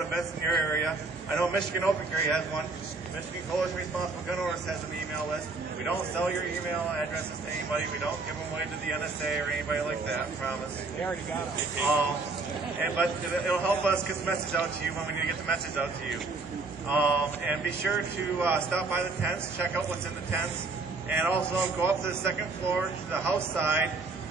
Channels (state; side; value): quieter; left; 3.8 dB